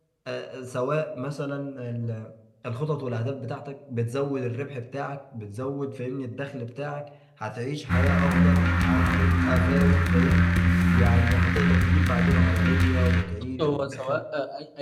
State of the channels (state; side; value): identical; both; correlation 1.00